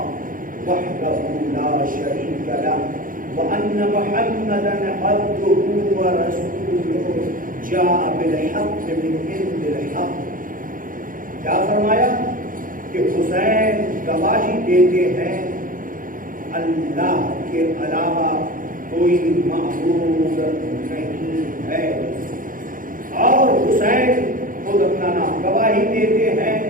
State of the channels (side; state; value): left; late; 0.40 ms